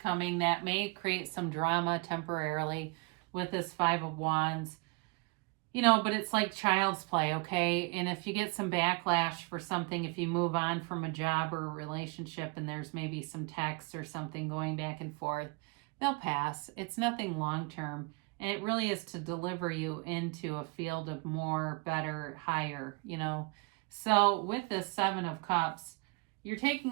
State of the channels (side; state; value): left; quieter; 28.5 dB